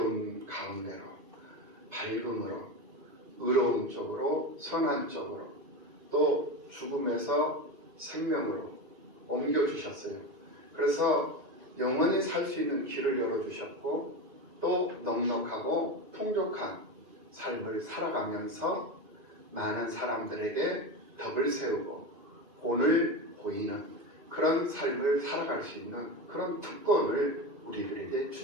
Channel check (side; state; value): left; late; 2.4 ms